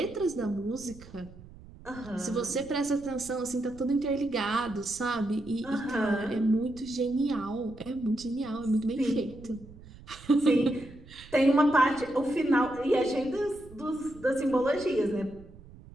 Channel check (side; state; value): right; noise; rumble, 20 dB below the sound